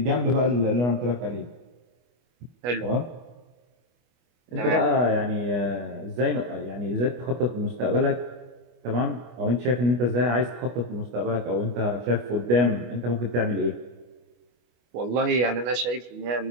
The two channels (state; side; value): late; left; 25 ms